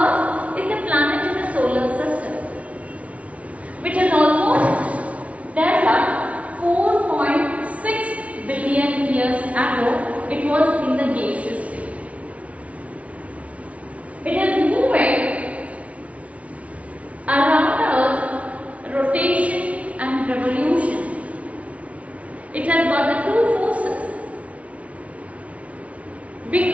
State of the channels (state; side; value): late; left; 0.065 ms